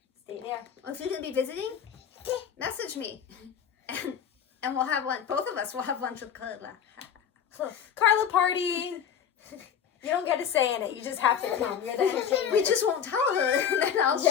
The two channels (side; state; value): right; quieter; 8.1 dB